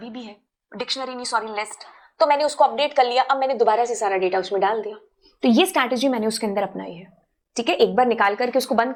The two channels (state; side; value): identical; both; correlation 1.00